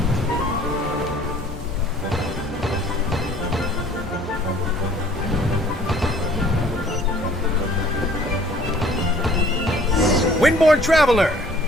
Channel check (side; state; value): both; normal; correlation 0.54